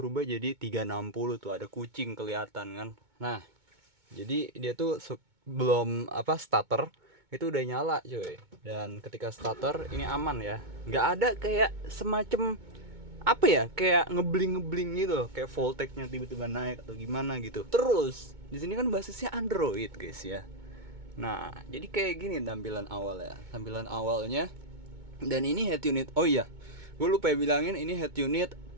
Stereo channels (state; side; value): late; left; 2.2 ms